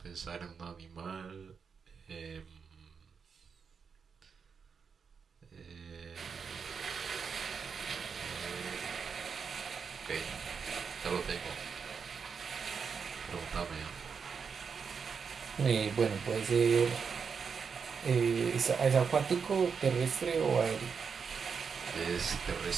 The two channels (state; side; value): quieter; left; 6.0 dB